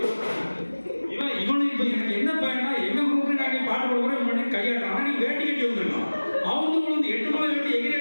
இவனு இப்ப எனக்கு என்ன பயனா, எங்க குரூப்ல நாங்க பாட்டு கொடுக்குறோம் பண்ணி கையாடுறான். ஆனா நீ வேட்டி கட்டி வந்துருக்கான். அவங்க வந்து 8 மலை வேட்டி எகிரி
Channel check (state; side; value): inverted; both; correlation -1.00